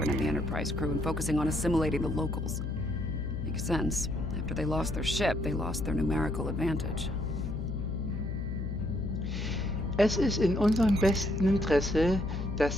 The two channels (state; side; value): noise; left; hum, 3 dB below the sound